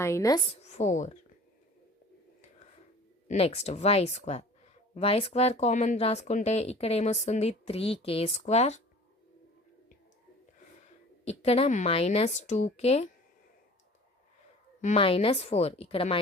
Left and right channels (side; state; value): both; normal; correlation 0.44